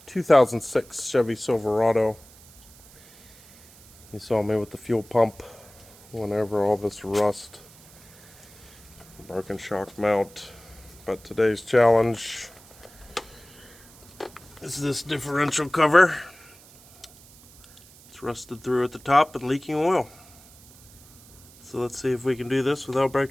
2006 Chevy Silverado. You saw me with the fuel pump whenever all this rust. Broken shock mount. But today's challenge is this differential cover. It's rusted through at the top and leaking oil. So let's see if we can do this without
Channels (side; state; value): right; noise; hiss, 23 dB below the sound